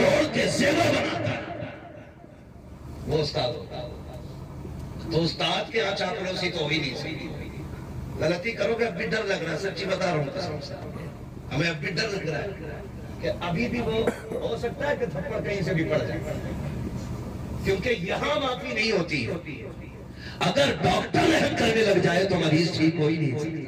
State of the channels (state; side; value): identical; both; correlation 1.00